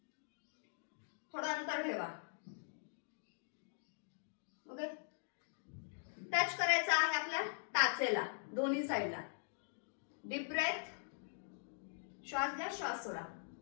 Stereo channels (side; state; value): right; silent; digital silence